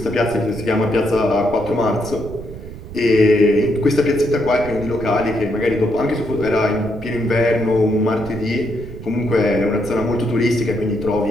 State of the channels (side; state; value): right; noise; rumble, 13 dB below the sound